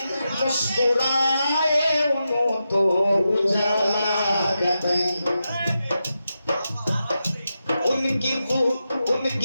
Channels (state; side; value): inverted; both; correlation -0.89